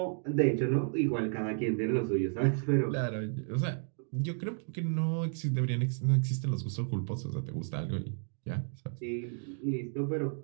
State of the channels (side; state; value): left; silent; 56 dB below the other